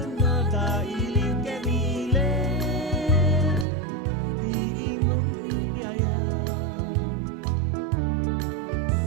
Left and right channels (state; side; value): drops out; left; at 3.7 s